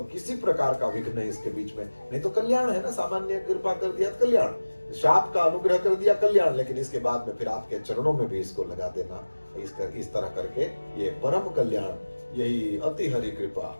किसी प्रकार का विघ्न है इसके बीच में। नहीं तो कल्याण है ना, सामान्य कृपा कर दिया कल्याण, शाप का अनुग्रह कर दिया कल्याण, लेकिन इसके बाद में फिर आपके चरणों में भी इसको लगा देना। इस तरह करके ये परम कल्याण, यही अति हरि कृपा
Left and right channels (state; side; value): inverted; both; correlation -1.00